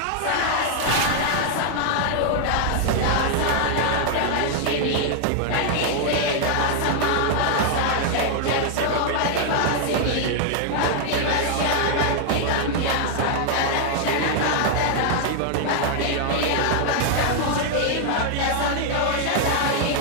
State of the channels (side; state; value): both; different; correlation 0.00